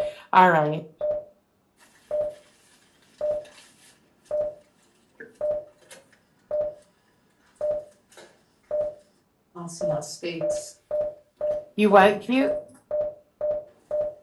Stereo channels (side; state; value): both; identical; correlation 1.00